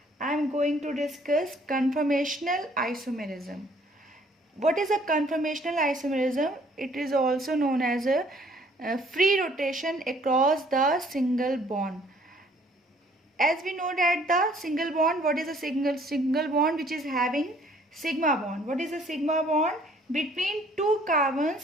I am going to discuss conformational isomerism. What is a conformational isomerism? It is also known as a free rotation across the single bond. As we know that the single bond, what is a single bond which is having sigma bond? What is a sigma bond? Between two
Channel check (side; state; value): both; normal; correlation 0.60